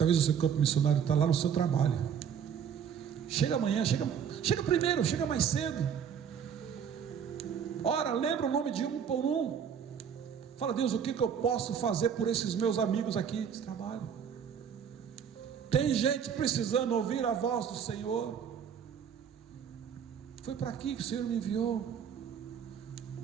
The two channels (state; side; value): quieter; left; 7.8 dB